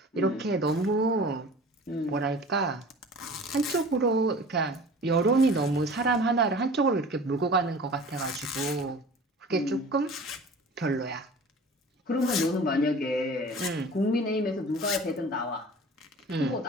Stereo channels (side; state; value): both; normal; correlation 0.42